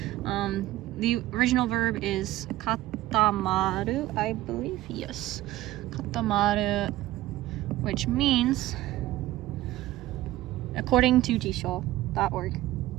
The original verb is katamaru, I believe. Yes, katamaru, which means, according to jisho.org,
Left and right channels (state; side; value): quieter; left; 15.6 dB